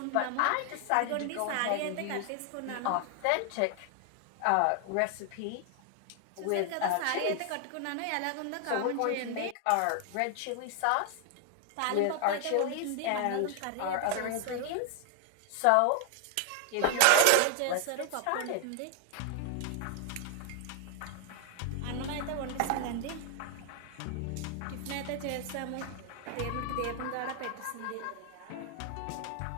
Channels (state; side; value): different; both; correlation 0.00